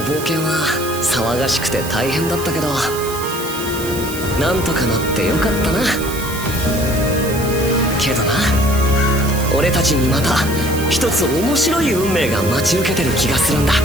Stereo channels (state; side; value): noise; right; hiss, 10 dB below the sound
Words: 冒険は騒がしくて大変だったけど、なんとかなってよかったな。けどな、俺たちにまた一つ面白い運命が待ち受けてる気がするんだ。